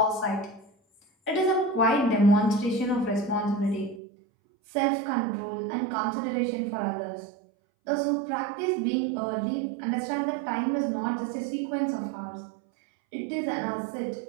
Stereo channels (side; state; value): left; drops out; at 4.0 s